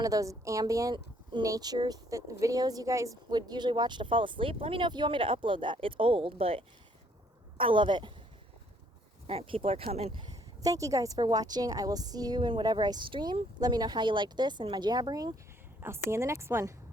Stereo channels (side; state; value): both; normal; correlation 0.65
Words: of those ambient nature videos you guys would usually watch to fall asleep. Let me know if you want me to upload that. It's old, but I love it. All right, people are coming. Thank you guys for watching. I will see you in whatever I stream. Let me know how you liked this and my jabbering. I'll see you in the next one.